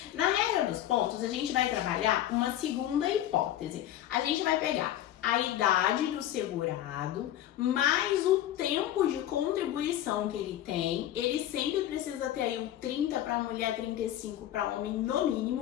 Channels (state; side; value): quieter; right; 12.5 dB